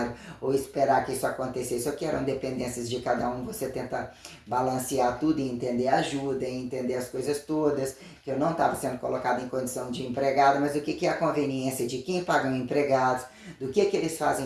ou esperar que isso acontecesse, ou que eram dependências de cada um, você tenta balancear tudo e entender a ajuda, e entender as coisas todas, que eu não estava sendo colocada em condição de empregada, mas o que é a conveniência de quem pagam empregados, do que eles fazem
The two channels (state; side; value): identical; both; correlation 1.00